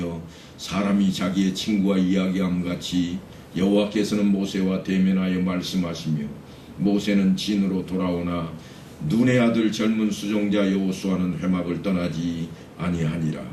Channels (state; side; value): identical; both; correlation 1.00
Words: 사람이 자기의 친구와 이야기함 같이 여호와께서는 모세와 대면하여 말씀하시며 모세는 진으로 돌아오나 눈의 아들 젊은 수종자 여호수아는 회막을 떠나지 아니하니라.